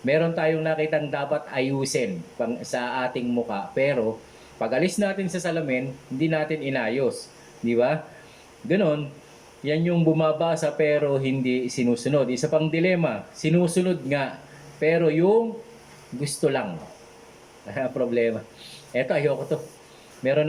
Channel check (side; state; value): both; identical; correlation 1.00